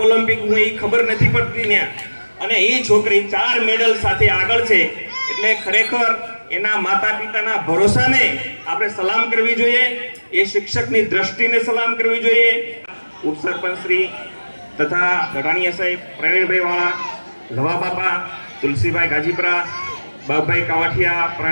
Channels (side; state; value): both; inverted; correlation -1.00